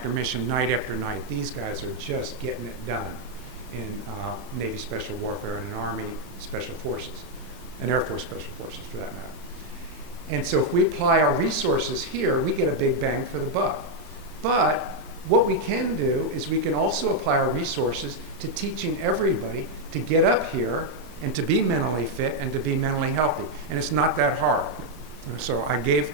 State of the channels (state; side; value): late; left; 18 ms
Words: mission, night after night. These guys are just getting it done in Navy Special Warfare and in Army Special Forces, and Air Force Special Forces for that matter. And so if we apply our resources here, we get a big bang for the buck. But what we can do is we can also apply our resources to teaching everybody to get up here and to be mentally fit and to be mentally healthy. And it's not that hard. So I gave